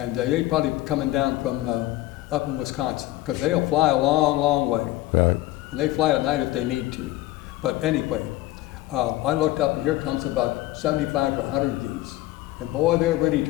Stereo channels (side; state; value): right; quieter; 16.8 dB